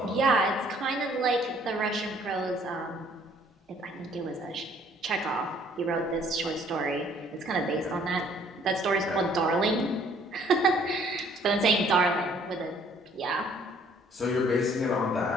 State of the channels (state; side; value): normal; both; correlation 0.60